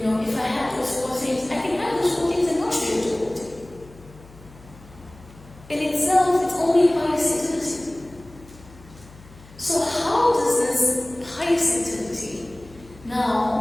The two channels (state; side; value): noise; left; hum, 22 dB below the sound